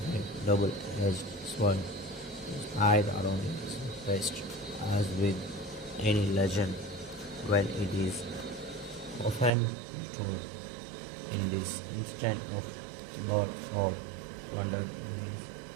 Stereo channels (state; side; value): drops out; left; at 9.5 s